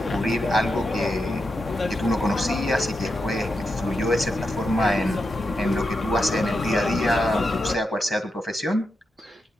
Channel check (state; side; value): normal; both; correlation 0.87